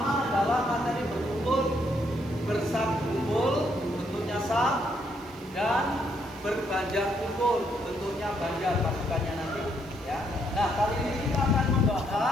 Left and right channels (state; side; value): noise; right; hiss, 26 dB below the sound